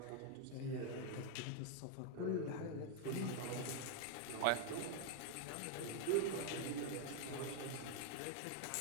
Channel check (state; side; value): different; both; correlation 0.01